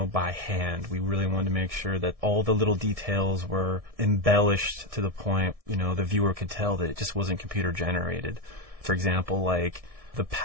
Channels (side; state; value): left; late; 1.7 ms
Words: by hand. We really wanted to make sure that all the little details were embellished to the point, the viewer could tell that it just wasn't computer generated. For example, like the